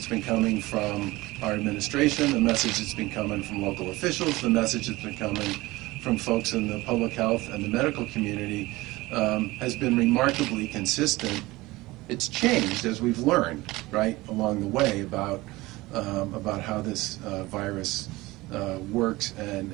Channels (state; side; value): quieter; left; 20.2 dB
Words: been coming from our administration, the message that's been coming from local officials, the message that's been coming from folks in the public health and the medical community has been remarkably consistent. It's changed as we've learned, right, along the way about how this virus works